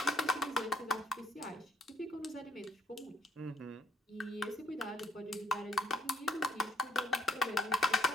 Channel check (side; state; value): both; normal; correlation 0.66